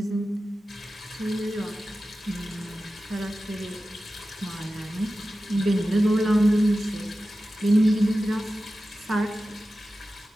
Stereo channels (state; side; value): normal; both; correlation 0.94